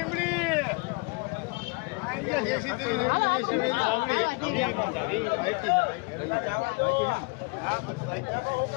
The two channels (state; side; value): quieter; right; 30.3 dB